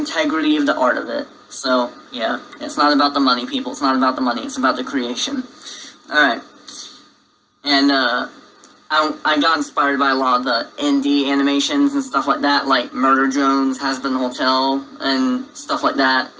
of the art of it. So, yeah, it's not about the money, people. It's not about the money. It's about the creation. Alright. And, I got inspired by a lot of the indie animations and stuff like that, like Murder Drones, Has Been Hotel, and stuff like that,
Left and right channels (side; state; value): both; identical; correlation 1.00